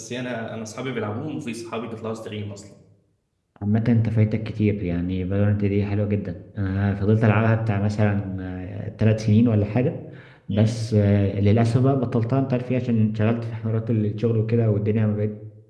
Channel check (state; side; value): identical; both; correlation 1.00